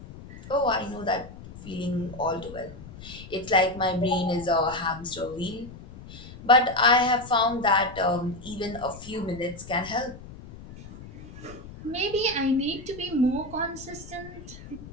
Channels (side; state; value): left; noise; rumble, 15 dB below the sound